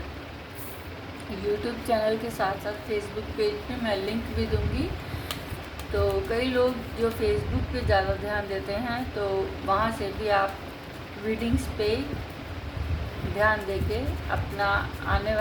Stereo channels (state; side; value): identical; both; correlation 1.00